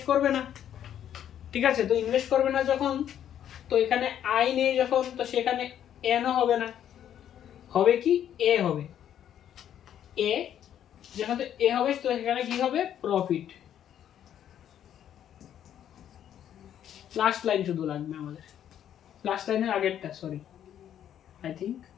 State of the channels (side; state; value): right; quieter; 10.2 dB